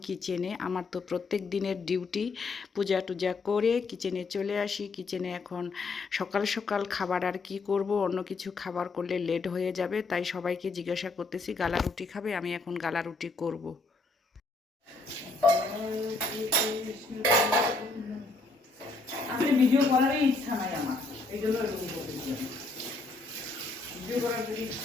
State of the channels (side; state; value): right; quieter; 3.6 dB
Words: কিচেনে। আমার তো প্রত্যেক দিনের ডিউটি, পূজা টুজা করে কিচেনে চলে আসি। কিচেনে এখন সকাল সকাল খাবার আর কি করব, অন্য কিছু খাবার করলে লেট হয়ে যাবে, তাই সবাইকে জিজ্ঞাসা করতেছি গালা রুটি খাবে। আমি এখন গালা রুটি করব। আসলে ভিডিও করারই ইচ্ছা নাই আমার, এই জন্য এরকম করতেছি। ভিডিও করার যদি